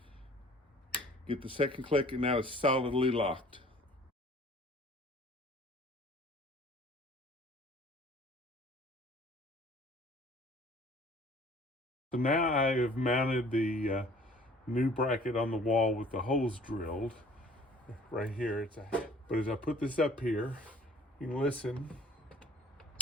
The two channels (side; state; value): both; normal; correlation 0.52